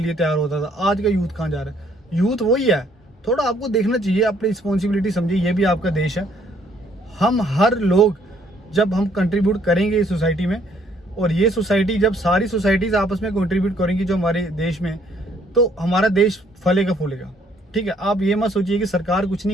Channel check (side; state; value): both; normal; correlation 0.65